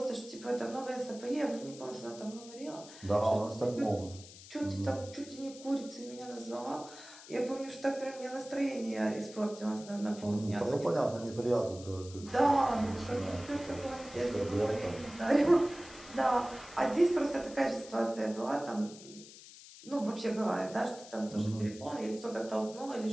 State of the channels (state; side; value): noise; left; hiss, 17 dB below the sound